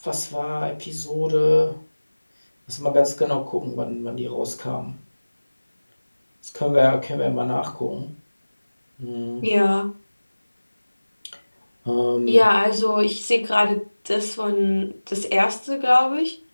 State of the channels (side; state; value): both; inverted; correlation -1.00